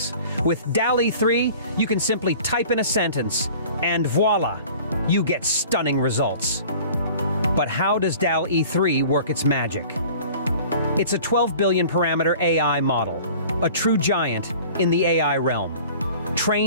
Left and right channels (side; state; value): both; inverted; correlation -0.46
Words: With DALL-E 3, you can simply type in a sentence, and voila, you get stunning results. But how does DALL-E 3 work its magic? It's a 12 billion parameter AI model, a true giant in the AI realm.